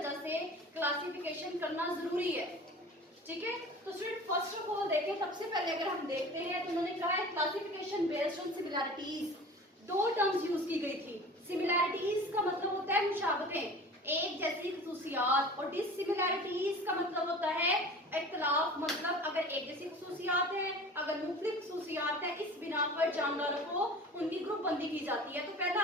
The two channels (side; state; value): both; normal; correlation 0.39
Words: से क्लासिफिकेशन करना जरूरी है। ठीक है, तो स्टूडेंट फर्स्ट ऑफ ऑल देखें, सबसे पहले अगर हम देखते हैं तो उन्होंने कहा है क्लासिफिकेशन बेस्ड ऑन सिमिलैरिटीज। दो टर्म्स यूज की गई थी। सिमिलैरिटीज का मतलब होता है मुशाबहतें, एक जैसी खसूसियात, और डिसिमिलैरिटीज का मतलब होता है इख्तिलाफ, मतलब अगर एक जैसी खसूसियात है, अगर मुख्तलिफ खसूसियात है, इस बिना पर जानदारों को उनकी ग्रुप बंदी की जाती है। तो